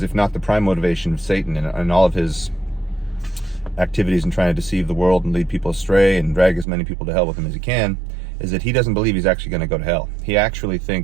if not the prime motivation of Satan and all of his activities in trying to deceive the world and lead people astray and drag as many people to hell with him as he can, is that he doesn't believe he's actually going to go to hell. He actually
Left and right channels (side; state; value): left; drops out; at 6.7 s